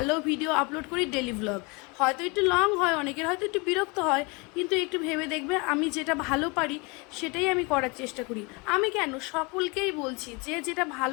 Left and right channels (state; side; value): quieter; right; 28.9 dB